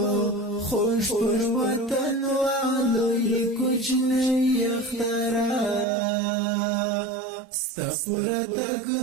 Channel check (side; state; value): left; drops out; at 5.9 s